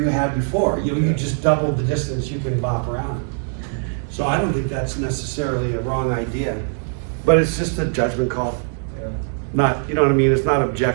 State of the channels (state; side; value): silent; left; 55 dB below the other